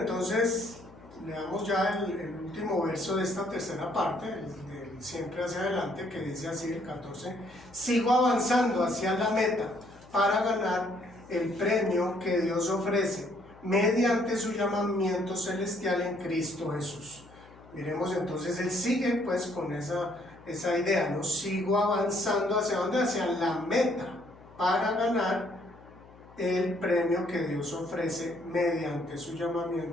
leamos ya el último verso de esta tercera parte, del siempre hacia adelante, que dice así, el 14: sigo avanzando hacia la meta para ganar el premio que Dios ofrece mediante su llamamiento celestial en Cristo Jesús. Miremos entonces, él sigue pues con esa idea, ¿no? Sigo avanzando hacia dónde, hacia la meta para ganar el premio que Dios ofrece mediante su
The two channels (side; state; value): left; noise; hum, 23 dB below the sound